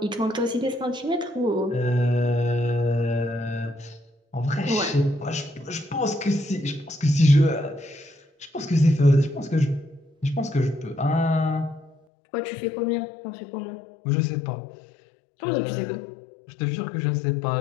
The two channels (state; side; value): drops out; right; at 12.0 s